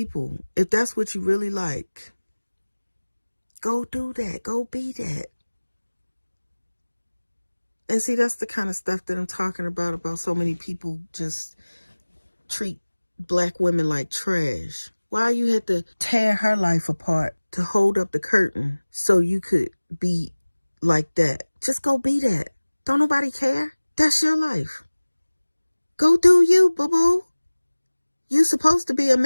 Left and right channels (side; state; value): both; inverted; correlation -1.00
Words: If that's what you really like, go do that. Go be that. And see, that's the kind of stuff that I'm talking about so many people just treat black women like trash. Why you had to tear her life apart to hold up the curtain so you could be like that? Just go be that. Don't nobody care. That's your life. Go do you, boo-boo. You supposed to be a